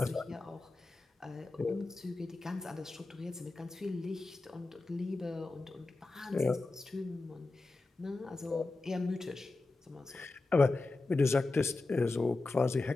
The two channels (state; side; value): quieter; right; 3.3 dB